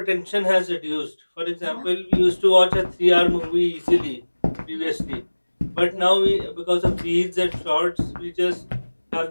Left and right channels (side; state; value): both; inverted; correlation -1.00